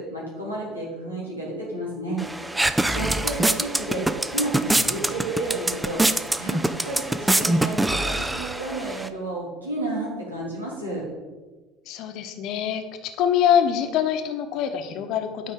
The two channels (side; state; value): both; normal; correlation 0.62